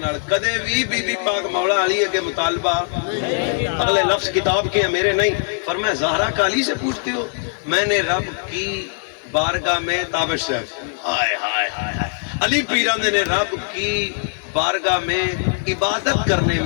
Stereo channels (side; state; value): right; silent; 63 dB below the other